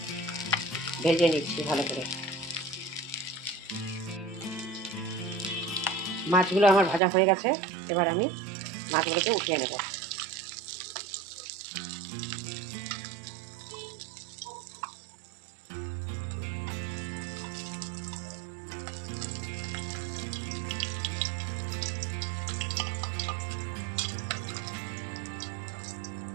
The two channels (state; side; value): drops out; left; at 7.0 s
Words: ভেজে নিচ্ছি ভালো করে। মাছগুলো আমার ভাজা হয়ে গেছে, এবার আমি মাছগুলোকে উঠিয়ে নেব।